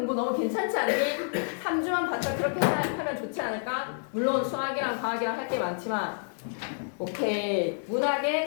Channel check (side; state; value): right; silent; 56 dB below the other